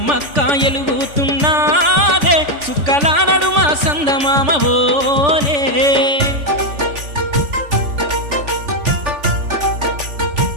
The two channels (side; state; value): left; late; 3.5 ms